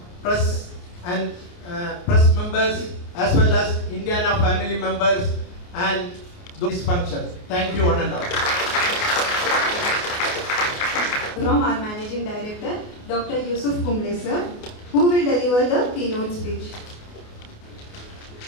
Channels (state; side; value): late; right; 28 ms